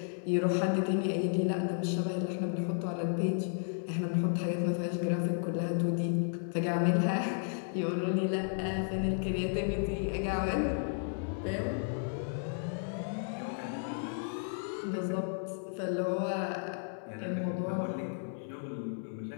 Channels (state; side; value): silent; right; 56 dB below the other